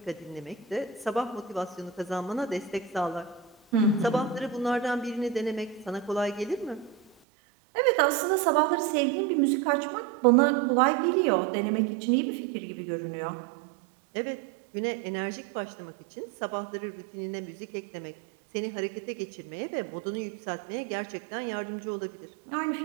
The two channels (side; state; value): left; drops out; at 7.1 s